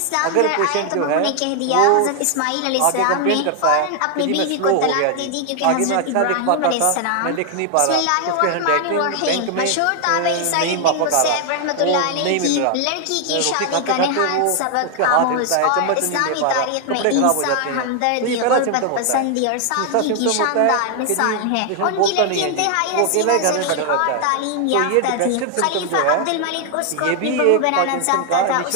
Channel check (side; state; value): both; different; correlation 0.00